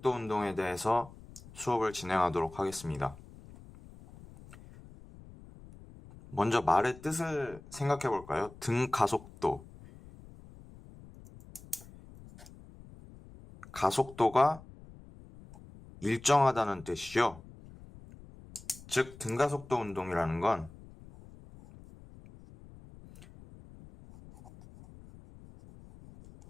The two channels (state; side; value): noise; left; rumble, 20 dB below the sound